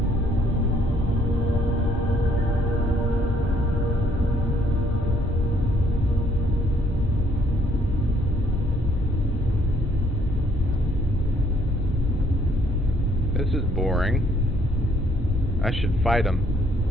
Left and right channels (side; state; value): both; normal; correlation 0.66